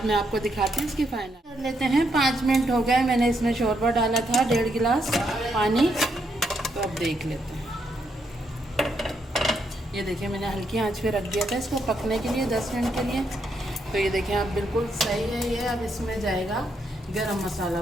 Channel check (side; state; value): both; normal; correlation 0.78